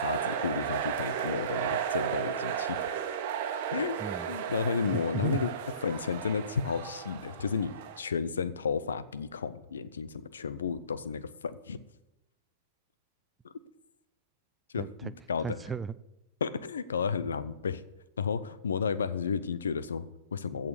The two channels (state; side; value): inverted; both; correlation -0.51